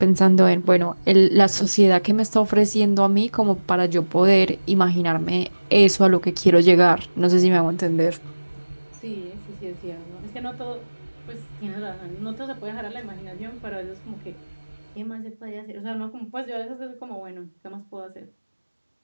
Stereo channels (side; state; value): both; inverted; correlation -1.00